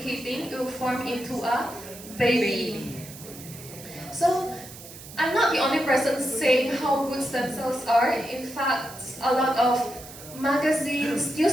it will form into a baby. So I'm not the only person saying how good stem cells are. In fact, a lot of magazines,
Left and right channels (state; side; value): noise; right; hiss, 16 dB below the sound